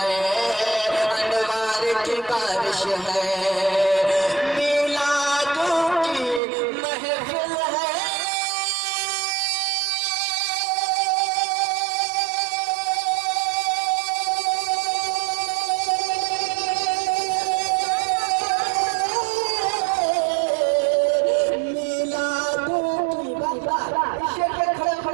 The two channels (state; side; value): drops out; left; at 6.4 s